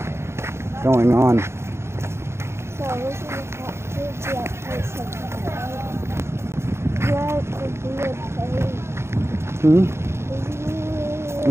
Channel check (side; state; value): left; late; 0.13 ms